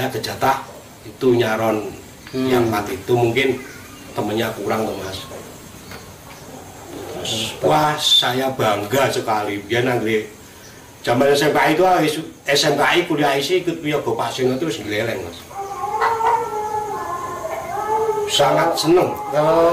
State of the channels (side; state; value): both; identical; correlation 1.00